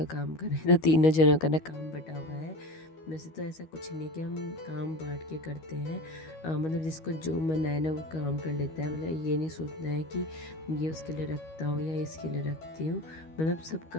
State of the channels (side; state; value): right; late; 13 ms